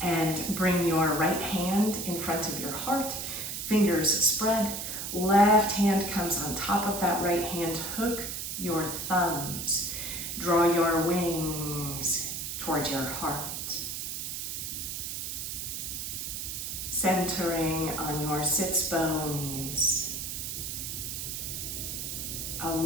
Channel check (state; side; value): noise; right; hiss, 5 dB below the sound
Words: and bring your right hand in front of your heart, fingers spread, left hand comes on top of that right hand, hook your thumbs, draw your wings towards your heart. Centering on your sits bones.